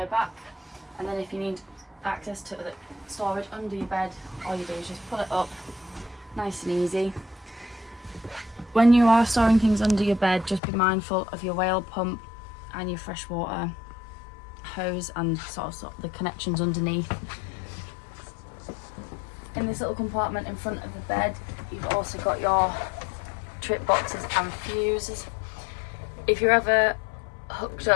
back, and then if you need access to the storage under your bed, all you do is just pull it up, nice and easy. When you are storing things under your bed, just be mindful of your whale pump and your freshwater hose and sort of the connections underneath. In this little compartment in front of the bed, you've also got your trip boxes and fuses. If you're ever hooked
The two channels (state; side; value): drops out; right; at 10.6 s